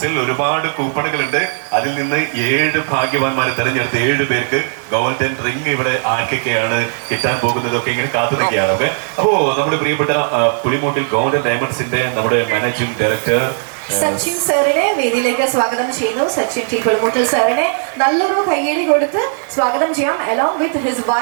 ഒരുപാട് കൂപ്പണുകളുണ്ട്. അതിൽ നിന്ന് 7 ഭാഗ്യവാന്മാരെ തെരഞ്ഞെടുത്ത് 7 പേർക്ക് ഗോൾഡൻ റിംഗ് ഇവിടെ ആർക്കൊക്കെയാണ് കിട്ടാൻ പോകുന്നതൊക്കെ ഇങ്ങനെ കാത്തു നിൽക്കുകയാണ്. ഓക്കെ, അപ്പോ നമ്മുടെ പ്രിയപ്പെട്ട പുളിമൂട്ടിൽ ഗോൾഡൻ ഡയമണ്ട്സിന്റെ നമ്മുടെ മാനേജിംഗ് ഡയറക്ടർ സച്ചിൻ സാറിനെ വേദിയിലേക്ക് സ്വാഗതം ചെയ്യുന്നു. സച്ചിൻ ടി പുളിമൂട്ടിൽ സാറിനെ നല്ലൊരു കയ്യടി കൊടുത്ത് സ്വാഗതം ചെയ്യാം. അലോങ് വിത്ത് ഹിസ്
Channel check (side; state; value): left; silent; digital silence